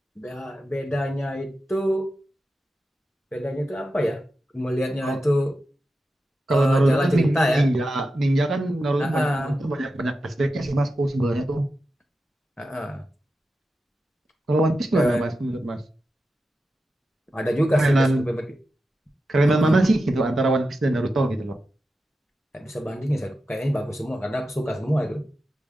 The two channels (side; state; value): both; normal; correlation 0.91